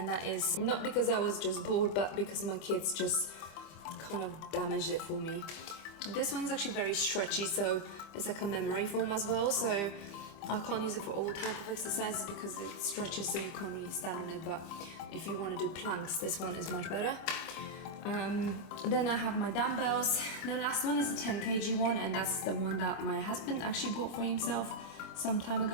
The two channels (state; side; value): late; right; 25 ms